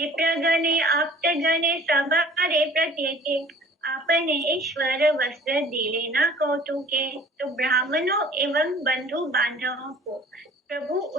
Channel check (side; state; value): both; normal; correlation 0.50